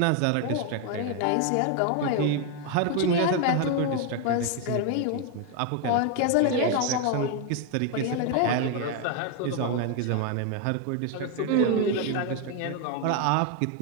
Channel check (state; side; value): different; both; correlation 0.01